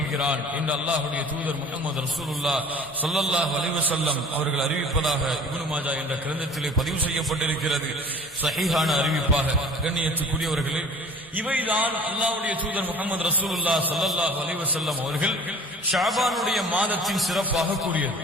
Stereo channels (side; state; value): both; normal; correlation 0.45